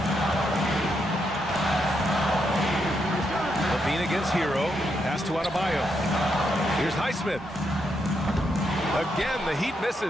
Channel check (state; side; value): normal; both; correlation 0.80